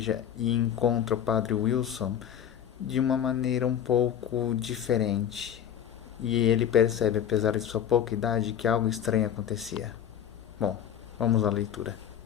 e encontra o padre Wilson de uma maneira um pouco diferente. E ele percebe, apesar de sua pouca idade, que algo estranho acontecia. Bom, vamos à leitura.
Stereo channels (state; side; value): quieter; right; 9.4 dB